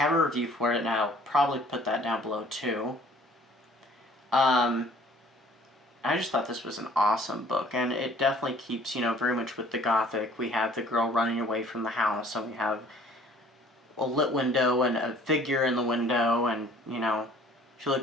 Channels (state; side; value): normal; both; correlation 0.54